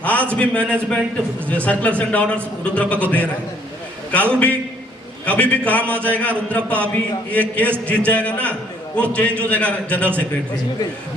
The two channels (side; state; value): both; normal; correlation 0.63